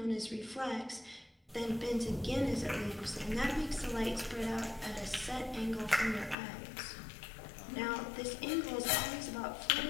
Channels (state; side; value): drops out; right; at 6.4 s